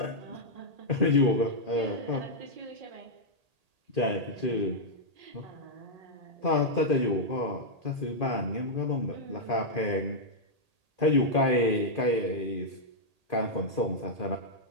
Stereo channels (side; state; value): left; late; 1.8 ms